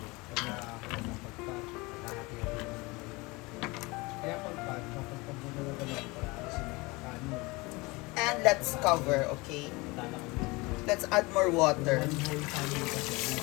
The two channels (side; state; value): right; quieter; 24.3 dB